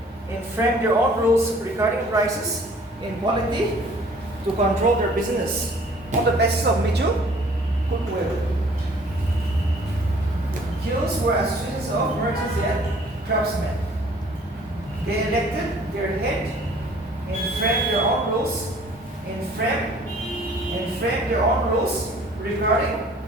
and framed their own rules regarding prices and quality to control their business on the basis of mutual goodwill. Guilds were associations of merchants and craftsmen. They elected their head and framed their own rules and framed their own rules regarding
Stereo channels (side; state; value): both; normal; correlation 0.54